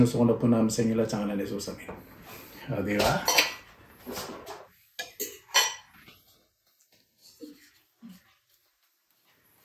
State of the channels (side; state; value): both; identical; correlation 1.00